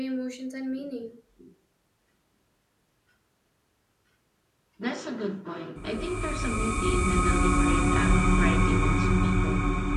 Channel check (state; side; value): identical; both; correlation 1.00